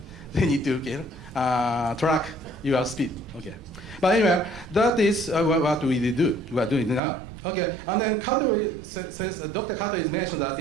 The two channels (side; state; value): left; drops out; at 7.0 s